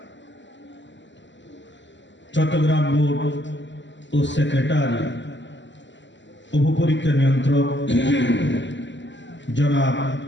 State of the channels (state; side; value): late; right; 0.53 ms